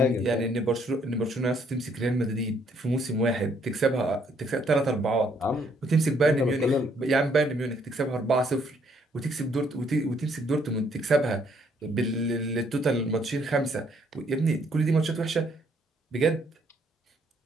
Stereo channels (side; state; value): both; normal; correlation 0.68